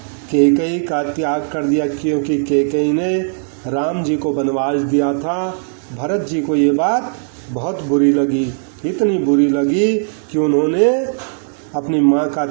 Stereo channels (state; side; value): silent; left; digital silence